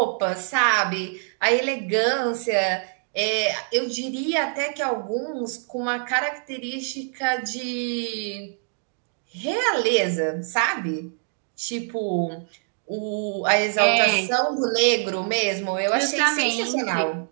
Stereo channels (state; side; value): silent; left; 58 dB below the other